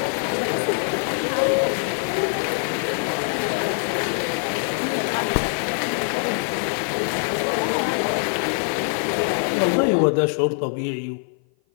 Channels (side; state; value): right; silent; 55 dB below the other